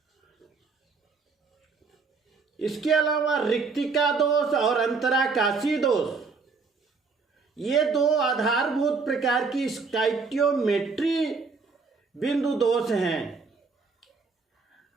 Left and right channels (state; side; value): quieter; left; 4.6 dB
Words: इसके अलावा रिक्तिका दोष और अंतराकाशी दोष, ये 2 आधारभूत प्रकार की स्टाइकियोमेट्री बिंदु दोष हैं।